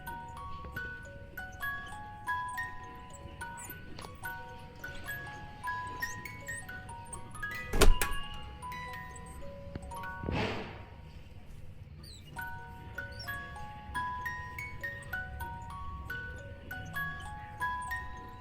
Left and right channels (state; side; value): identical; both; correlation 1.00